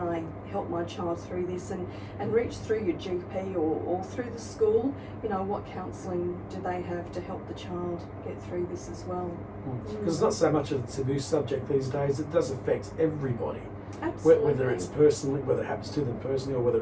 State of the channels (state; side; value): identical; both; correlation 1.00